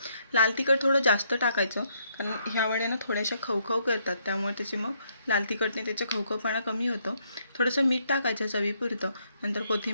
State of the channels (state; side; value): inverted; both; correlation -0.73